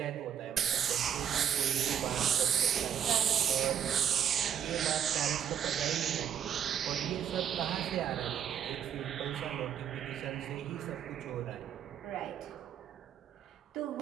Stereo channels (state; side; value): quieter; left; 9.0 dB